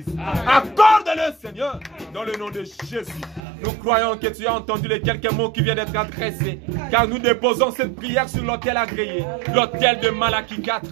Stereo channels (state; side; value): drops out; left; at 3.4 s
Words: Accorde-le, Seigneur, dans le nom de Jésus. Nous croyons que tu as entendu les quelques mots qui viennent d'être adressés. Car nous déposons cette prière sur l'autel agréé, l'autel de Malachie 4.